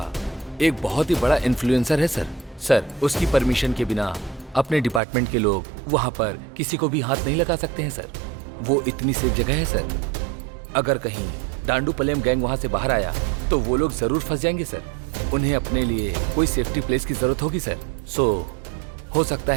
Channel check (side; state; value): left; drops out; at 5.0 s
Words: एक बहुत ही बड़ा इन्फ्लुएंसर है सर। सर, उसकी परमिशन के बिना अपने डिपार्टमेंट के लोग वहां पर किसी को भी हाथ नहीं लगा सकते हैं सर। वो इतनी सेफ जगह है सर। अगर कहीं डांडूपलियम गैंग वहां से बाहर आया तो वो लोग जरूर फंस जाएंगे सर। उन्हें अपने लिए कोई सेफ्टी प्लेस की जरूरत होगी सर। सो हो सकता